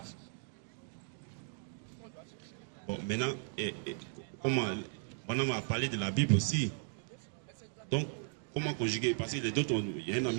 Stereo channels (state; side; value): silent; left; 53 dB below the other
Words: Bon, maintenant, comment Branham a parlé de la Bible aussi. Donc, comment conjuguer? Parce que il y a un